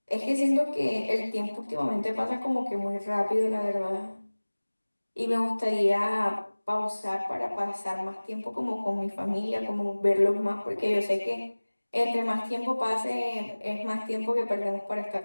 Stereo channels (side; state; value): both; inverted; correlation -1.00